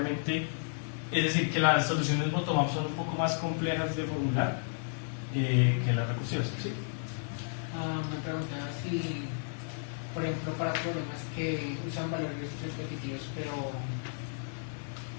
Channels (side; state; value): right; silent; 56 dB below the other